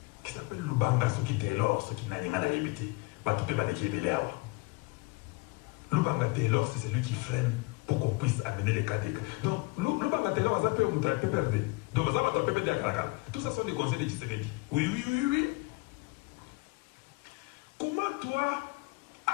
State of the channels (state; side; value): quieter; right; 25.7 dB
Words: qui s'appelle Lubanga, ce qui était l'or, ce qui n'a rien à éviter. Lubanga Taylor, c'est celui qui freine pour qu'on puisse amener les cas des cas. Donc, Lubanga Taylor, ça peut être PPRD. Donc, ça va être PPRD à Kalakala. Tout ça sont des conseils de Tshisekedi. Oui. Comment toi,